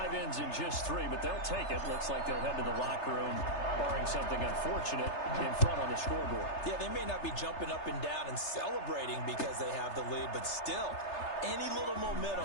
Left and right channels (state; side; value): late; right; 3.3 ms